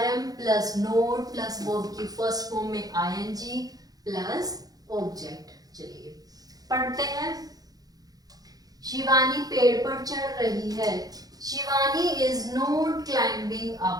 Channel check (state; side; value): late; left; 0.18 ms